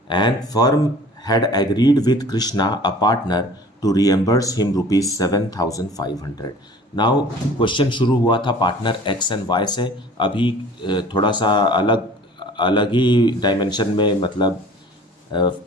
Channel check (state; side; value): normal; both; correlation 0.47